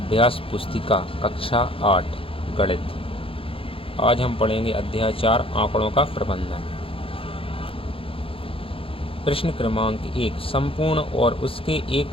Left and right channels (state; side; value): late; right; 0.27 ms